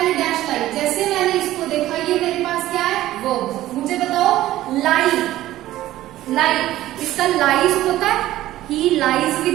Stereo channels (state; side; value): quieter; left; 14.8 dB